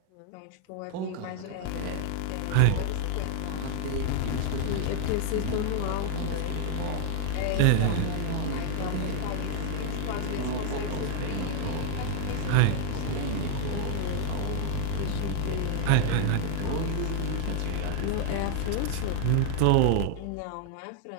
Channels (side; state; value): both; different; correlation 0.00